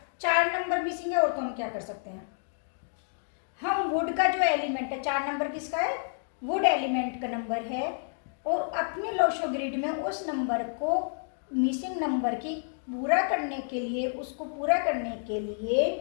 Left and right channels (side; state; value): right; silent; digital silence